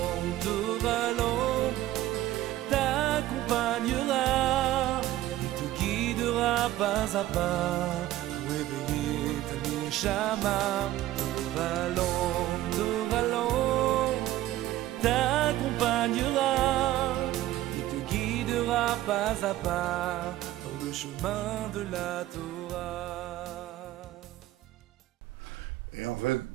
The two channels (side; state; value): left; quieter; 14.9 dB